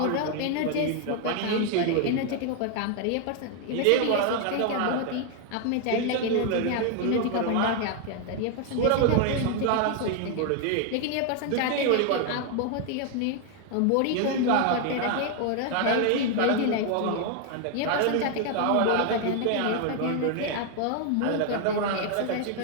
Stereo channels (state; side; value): different; both; correlation 0.01